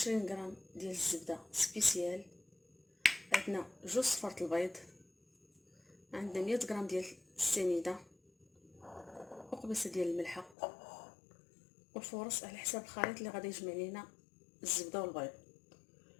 غرام ديال الزبده سبيسيال، عندنا جوج صفارة البيض، عندنا 100 غرام ديال السنيده، وقبيصه ديال الملحه، والفورص على حساب الخليط اللي غادي يجمع لينا الزبده والبيض.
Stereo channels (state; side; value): drops out; right; at 10.6 s